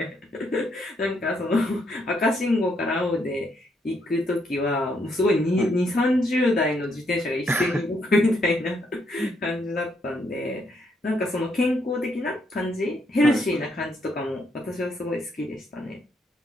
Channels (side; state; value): both; normal; correlation 0.75